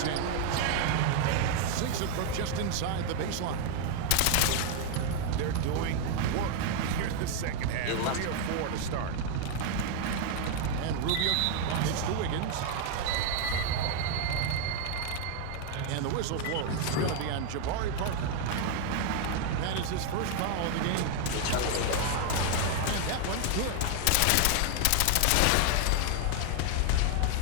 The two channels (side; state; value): both; different; correlation 0.00